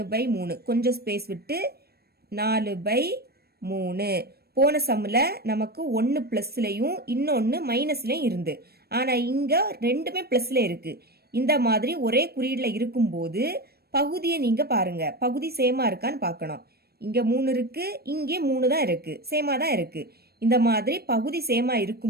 கொஞ்சம் ஸ்பேஸ் விட்டு 4/3. போன சம்மில் நமக்கு 1 ப்ளஸ்லையும் இன்னொன்று மைனஸ்லையும் இருந்து, ஆனால் இங்கே ரெண்டுமே ப்ளஸில் இருக்கு. இந்த மாதிரி ஒரே குறியீடில் இருக்கும்போது பகுதியை நீங்க பாருங்க, பகுதி சேமா இருக்கான்னு பார்க்கணும். இங்க 3 இருக்கு, இங்கே 3 தான் இருக்கு, சேமா தான் இருக்கு. இந்த மாதிரி பகுதி சேமா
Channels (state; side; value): late; left; 0.46 ms